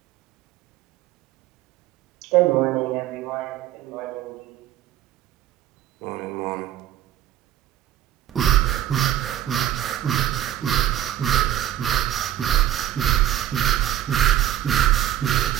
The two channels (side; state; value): left; quieter; 12.3 dB